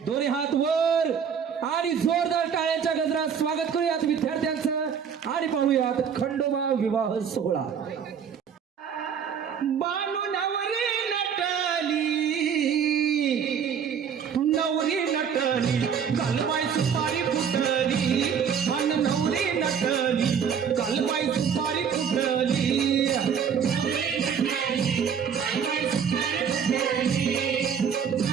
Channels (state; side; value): quieter; left; 7.3 dB